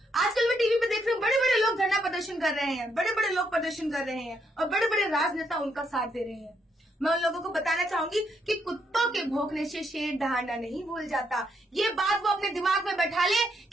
आजकल मैं टीवी पे देख रही हूँ, बड़े बड़े लोग धरना प्रदर्शन कर रहे हैं, बड़े बड़े लोग प्रदर्शन कर रहे हैं और बड़े बड़े राजनेता उनका साथ दे रहे हैं। मैं उन लोगों को बताना चाहूंगी कि कुत्तों के भौंकने से शेर दहाड़ना नहीं भूल जाता। ये बात वो अपने दिमाग में बैठा ले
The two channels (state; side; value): normal; both; correlation 0.76